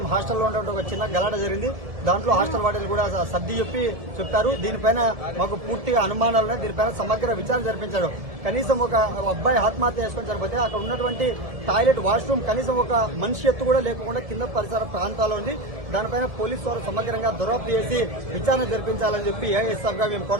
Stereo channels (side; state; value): left; late; 1.7 ms